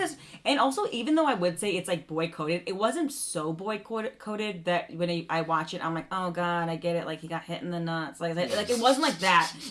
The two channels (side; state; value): both; identical; correlation 1.00